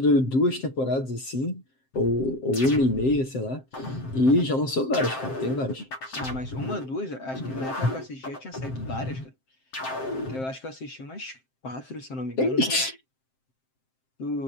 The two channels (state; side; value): late; right; 7.6 ms